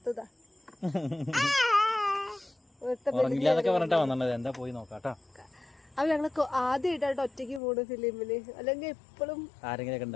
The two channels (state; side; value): drops out; right; at 7.6 s